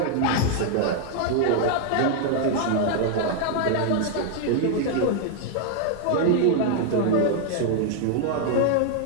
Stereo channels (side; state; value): both; different; correlation 0.00